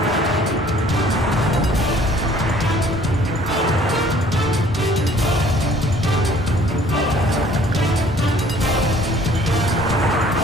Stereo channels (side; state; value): both; normal; correlation 0.56